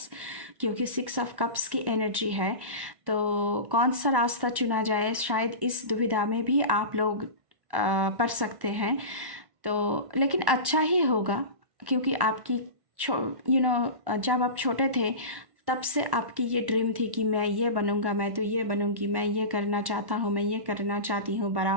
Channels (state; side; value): late; left; 1.1 ms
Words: क्योंकि 6 ऑफ कप्स की एनर्जी है। तो कौन सा रास्ता चुना जाए, शायद इस दुविधा में भी आप लोग पड़ सकते हैं। तो लेकिन अच्छा ही होगा, क्योंकि आपकी जब आप छोटे थे तब से आपकी ये ड्रीम थी कि मैं ये बनूंगा, मैं तो ये बनूंगी, मैं ये करना चाहता हूँ, मैं ये करना चाहती हूँ बड़ा